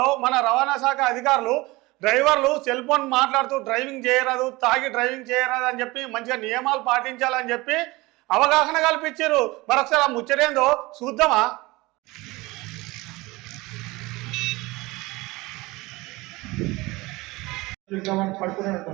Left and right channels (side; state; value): left; quieter; 21.8 dB